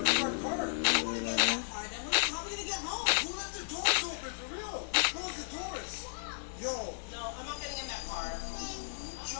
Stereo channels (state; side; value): silent; right; digital silence